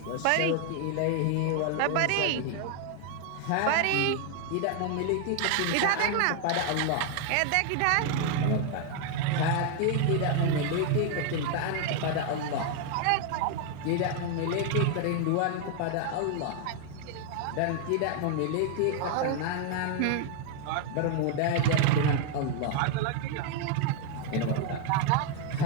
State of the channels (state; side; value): different; both; correlation 0.01